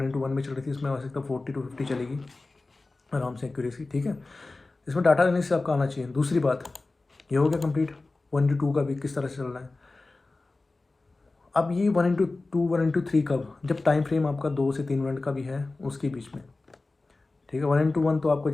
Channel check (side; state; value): right; quieter; 3.3 dB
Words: में चल रही थी, इसमें आ सकता है 40-50 चलेगी आराम से एक्यूरेसी, ठीक है। इसमें डाटा लेने से आपका आना चाहिए। दूसरी बात, ये हो गया कंप्लीट 1:2 का भी किस तरह से चल रहा है। अब ये 1:2 1:3 कब, जब टाइम फ्रेम आपका 2 से 3 मिनट का भी है उसके बीच में, ठीक है। 1:1 तो आपको